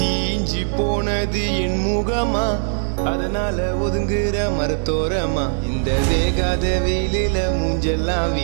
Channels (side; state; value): left; silent; digital silence